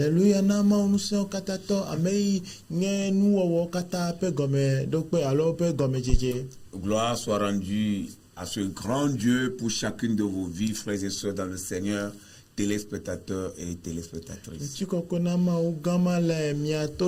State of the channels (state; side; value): identical; both; correlation 1.00